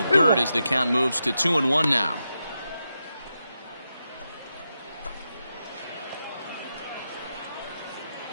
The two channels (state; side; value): inverted; both; correlation -0.87